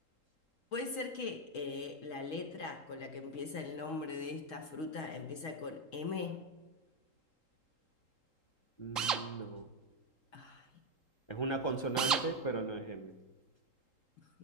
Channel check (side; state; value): right; late; 3.8 ms